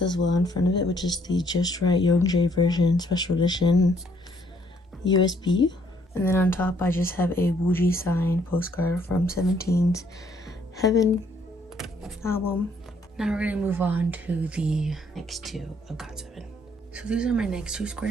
as well in front of it, which is the Just Right Youngjae version special edition USB. And then on top, I just have a Wooji signed postcard from 17's Heaven album. Now we're gonna move on to the next 2 of GOT7. So these are my next 2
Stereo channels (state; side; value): normal; both; correlation 0.67